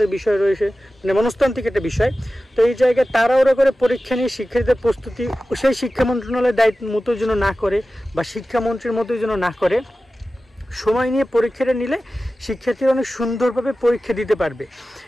বিষয় রয়েছে, মানে মনস্তান্ত্রিক একটা বিষয়। তো এই জায়গায় তাড়াহুড়ো করে পরীক্ষা নিয়ে শিক্ষার্থীদের প্রস্তুতি সেই শিক্ষা মন্ত্রণালয়ের দায়িত্ব মতো যেন না করে বা শিক্ষামন্ত্রীর মতোই যেন না করে, সময় নিয়ে পরীক্ষাটা নিলে শিক্ষার্থীরা অনেক সুন্দরভাবে পরীক্ষা দিতে পারবে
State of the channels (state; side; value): normal; both; correlation 0.95